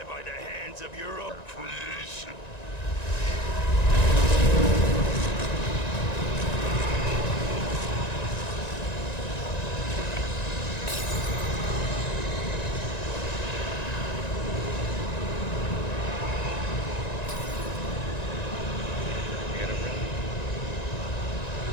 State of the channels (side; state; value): right; late; 1.9 ms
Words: by the hands of your own creation? You gotta run.